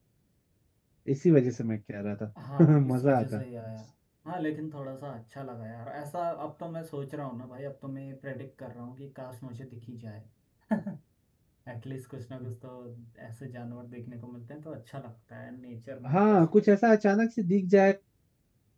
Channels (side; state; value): both; identical; correlation 1.00